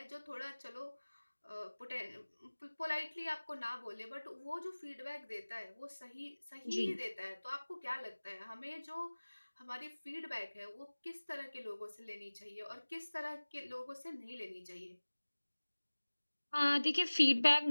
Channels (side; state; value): both; inverted; correlation -1.00